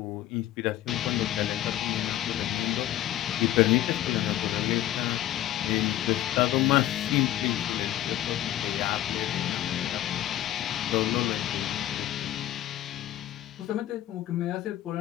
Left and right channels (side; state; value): right; quieter; 13.2 dB